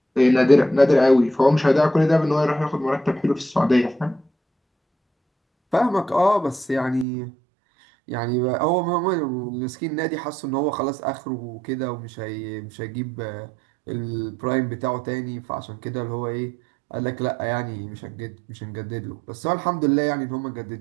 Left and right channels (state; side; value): drops out; left; at 7.1 s